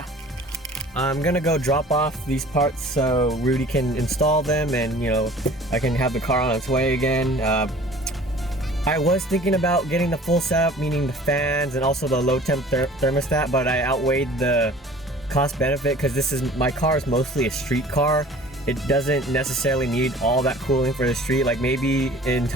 I'm gonna go drop off these parts so Rudy can install them, and I can have the car on its way again. I was thinking about getting the full setup, meaning the fans and also the low temp thermostat, but I outweighed the cost benefit because my car is mostly a street car. It doesn't necessarily need all that cooling for the street. Like maybe in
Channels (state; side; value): normal; both; correlation 0.47